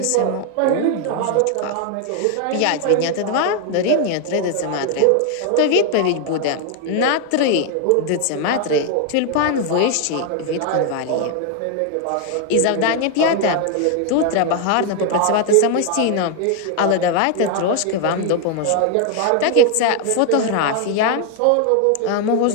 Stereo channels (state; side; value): different; both; correlation 0.00